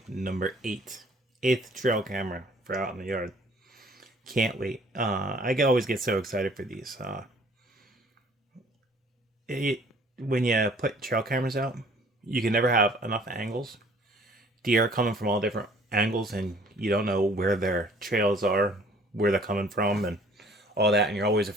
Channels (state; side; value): normal; both; correlation 0.55